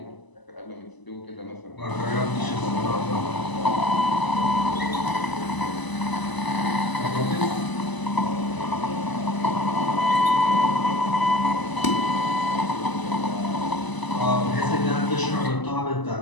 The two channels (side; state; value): right; late; 1.0 ms